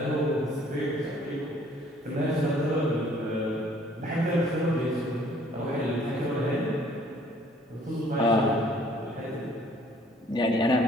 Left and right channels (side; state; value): both; normal; correlation 0.58